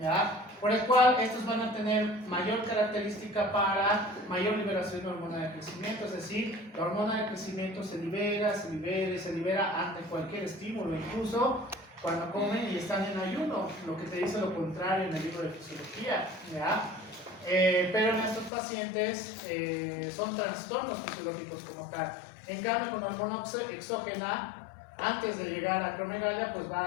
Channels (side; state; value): right; drops out; at 18.5 s